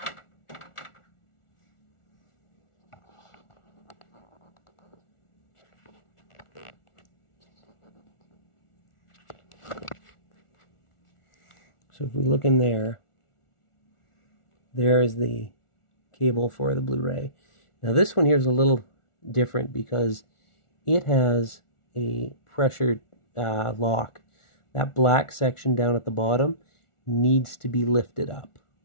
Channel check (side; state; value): right; late; 1.4 ms